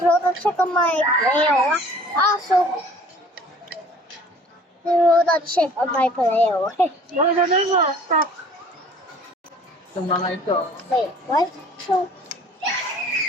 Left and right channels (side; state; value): both; normal; correlation 0.51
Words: a check on my mail. Also, I wrote a check on my mail. Ano na mo? Stop. Itong mga ito. Wait, what? So,